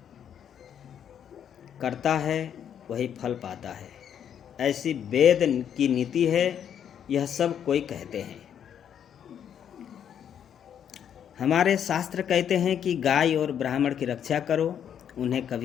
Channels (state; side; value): quieter; right; 8.9 dB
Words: करता है वही फल पाता है, ऐसी वेद की नीति है। यह सब कोई कहते हैं। हमारे शास्त्र कहते हैं कि गाय और ब्राह्मण की रक्षा करो, उन्हें